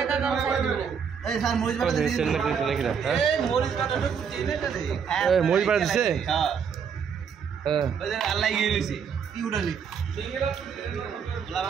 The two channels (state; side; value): quieter; left; 6.9 dB